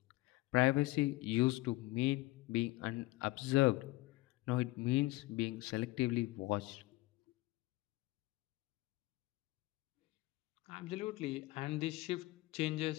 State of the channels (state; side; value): quieter; right; 19.7 dB